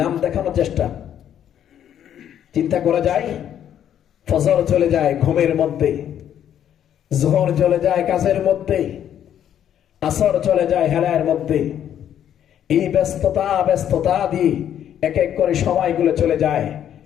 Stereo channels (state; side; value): quieter; right; 10.1 dB